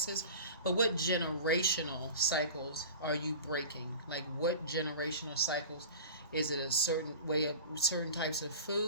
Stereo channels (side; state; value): both; inverted; correlation -0.37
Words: But what generational cycles are you breaking? Like what generational cycles? Is it a certain way of certain types of